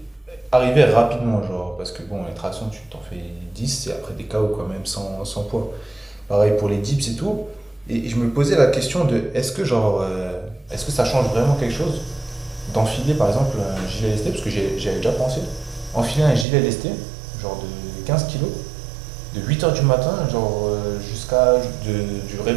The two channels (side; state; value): left; drops out; at 16.4 s